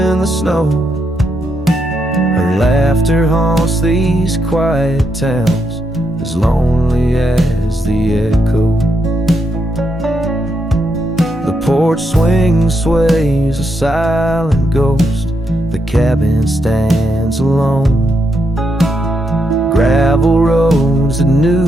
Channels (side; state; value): both; normal; correlation 0.81